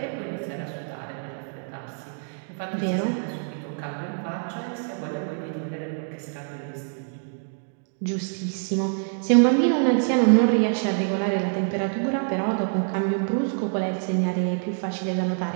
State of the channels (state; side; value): silent; left; 61 dB below the other